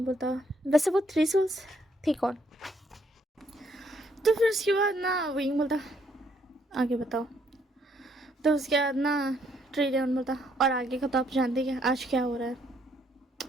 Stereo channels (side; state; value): both; normal; correlation 0.70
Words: बोलता, वैसे वो 3 सोल्स थी कौन? तो फिर उसके बाद ना विंग बोलता, आगे बताओ। तो उसके बाद ना ट्रिडल बोलता, और आगे का तो आप जानते हैं आज क्या हो रहा है।